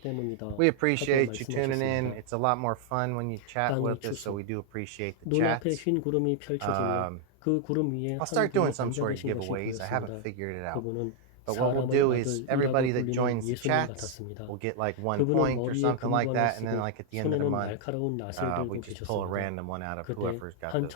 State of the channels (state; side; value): different; both; correlation 0.00